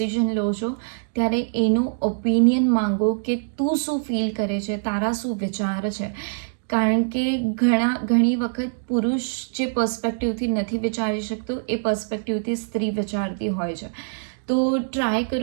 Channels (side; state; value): left; silent; digital silence